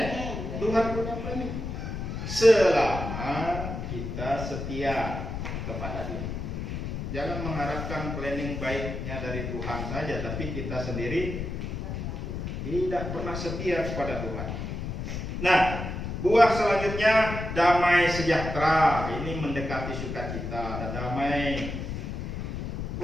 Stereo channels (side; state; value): left; noise; rumble, 5 dB below the sound